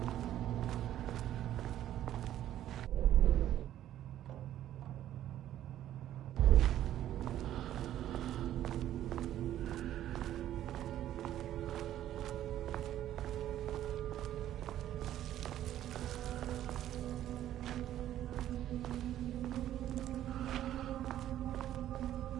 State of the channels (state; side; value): quieter; left; 12.2 dB